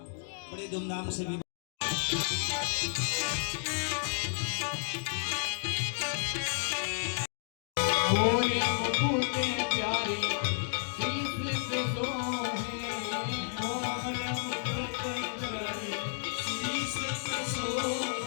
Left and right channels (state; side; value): silent; right; digital silence